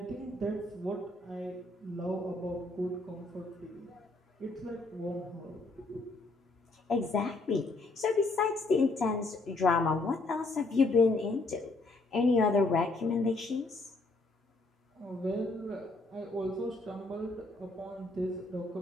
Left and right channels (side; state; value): right; quieter; 3.1 dB